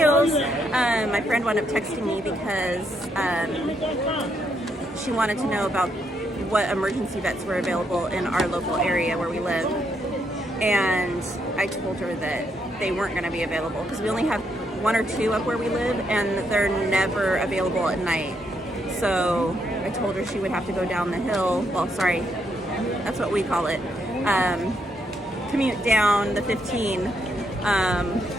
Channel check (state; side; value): normal; both; correlation 0.77